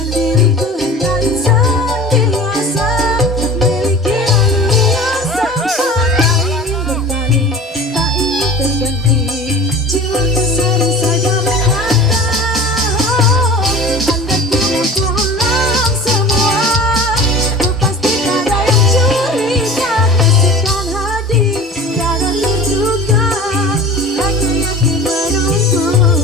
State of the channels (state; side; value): normal; both; correlation 0.38